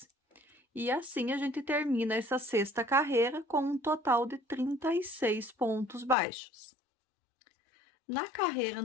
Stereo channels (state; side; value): drops out; right; at 6.2 s